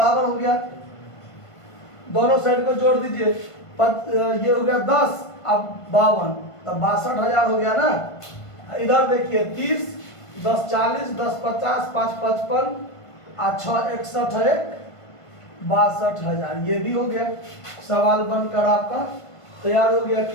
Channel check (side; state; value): right; late; 1.5 ms